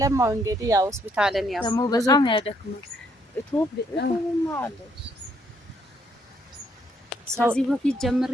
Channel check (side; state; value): both; normal; correlation 0.70